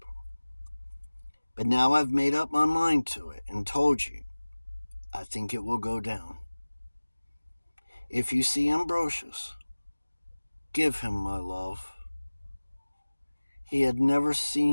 But now I've made up my mind to it and told you. I think it will go down. If you see Ambrosious, give him my love. He had never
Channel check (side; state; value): both; inverted; correlation -1.00